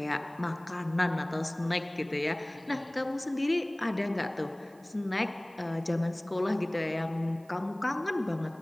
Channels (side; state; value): right; noise; hiss, 29 dB below the sound